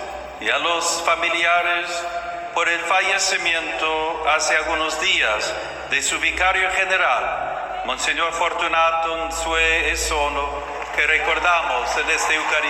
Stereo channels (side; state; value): both; identical; correlation 1.00